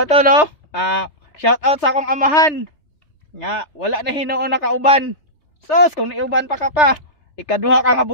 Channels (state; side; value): late; right; 3.3 ms